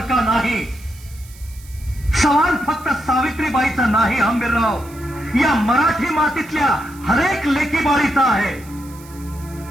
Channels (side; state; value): right; noise; hiss, 22 dB below the sound